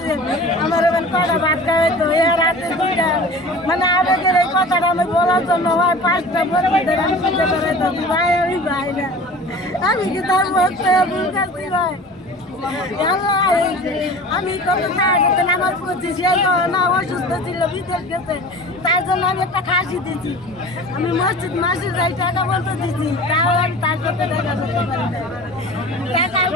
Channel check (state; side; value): normal; both; correlation 0.39